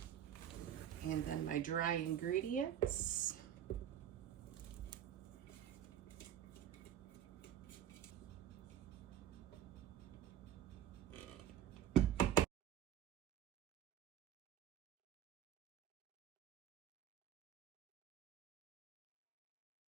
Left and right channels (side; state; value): left; quieter; 10.4 dB